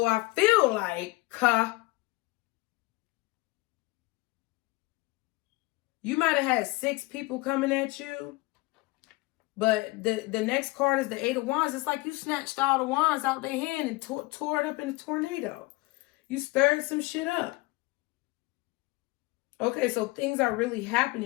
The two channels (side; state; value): right; quieter; 22.0 dB